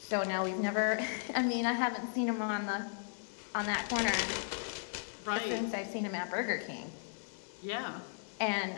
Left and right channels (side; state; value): right; silent; digital silence